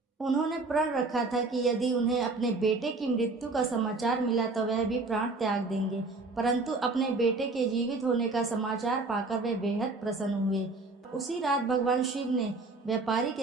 उन्होंने प्रण रखा था कि यदि उन्हें अपने बेटे की मृत्यु का समाचार मिला तो वह भी प्राण त्याग देंगे, परंतु अपने बेटे के जीवित होने का समाचार पाकर वे बेहद प्रसन्न हुए। उसी रात भगवान शिव ने व्यापारी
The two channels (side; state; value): left; quieter; 3.5 dB